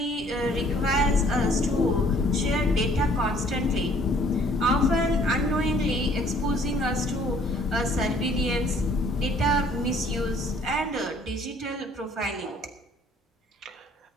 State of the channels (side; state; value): both; normal; correlation 0.59